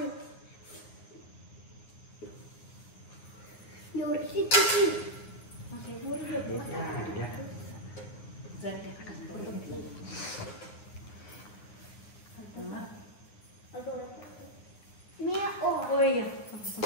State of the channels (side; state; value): right; late; 9.9 ms